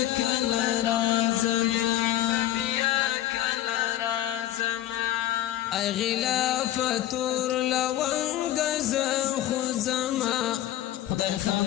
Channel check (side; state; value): right; quieter; 13.1 dB